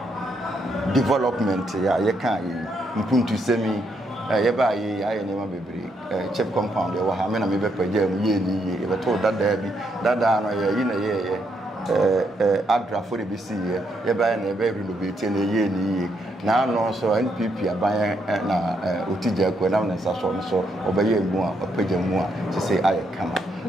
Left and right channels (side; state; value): both; normal; correlation 0.76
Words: development ya ye kan ye mpuntu semi ye ba ye aye nema bebre chip compound ye wo ha me na me be paja mu ye ni ye be to dada bi dada no ye yi na ye Adra for the BC, ye buy a baby renovate and a year now no so NPP aban na otija ko na nsa so obeye mu a opagya mu a to say I come